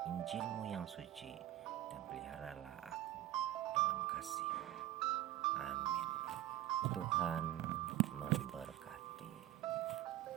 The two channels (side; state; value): left; quieter; 13.8 dB